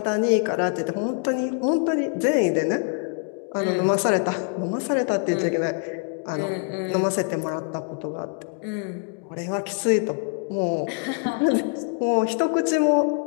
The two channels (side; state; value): right; quieter; 39.4 dB